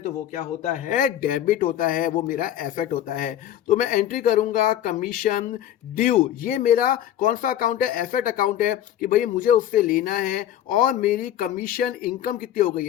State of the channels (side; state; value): right; quieter; 11.4 dB